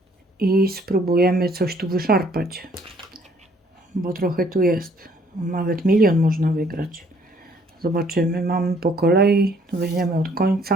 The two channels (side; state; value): both; normal; correlation 0.62